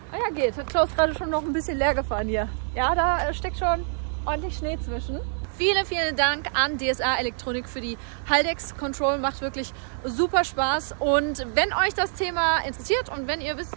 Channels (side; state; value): left; silent; digital silence